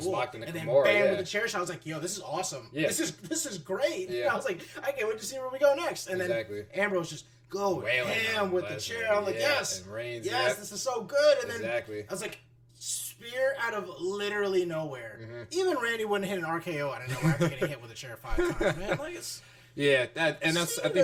And then bam with the chair shot. I was like, yo, this is awesome. Yeah. This is great. Yeah. I was like, I can't wait to see where we go next. And then Ambrose just go ham with the chair. I'm like, yes, this is so good. And then I was like, spear out of literally nowhere. Mm-hmm. Even Randy wouldn't hit an RKO out of nowhere after getting hit with a chair 5 times. Man, like it's. Yeah, that's. Cena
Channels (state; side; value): identical; both; correlation 1.00